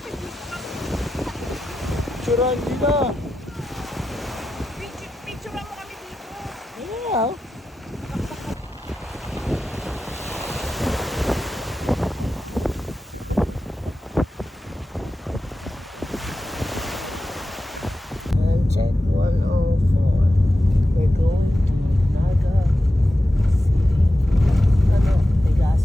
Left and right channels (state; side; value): normal; both; correlation 0.91